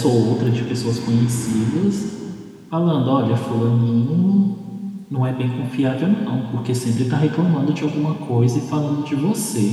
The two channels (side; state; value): both; identical; correlation 1.00